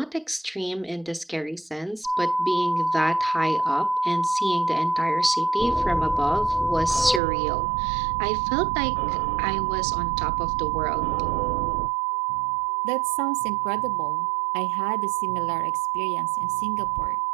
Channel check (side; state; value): left; drops out; at 7.2 s